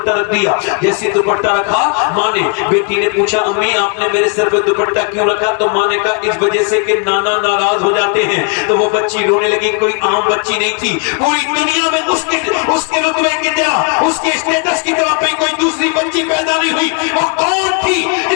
رکھ دیا، جیسے دوپٹہ رکھا ماں نے، بیٹی نے پوچھا امی آپ نے میرے سر پہ دوپٹہ کیوں رکھا؟ تو ماں نے کہا اس وجہ سے کہ نانا ناراض ہو جاتے ہیں۔ تو وہ بچی رونے لگی، کوئی عام بچی نہیں تھی، پوری دنیا میں اس کے رتبے کی طرح، اس کے اسٹیٹس کی طرح پہ کوئی دوسری بچی پیدا نہیں ہوئی۔ وہ کون تھی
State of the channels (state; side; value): quieter; right; 35.0 dB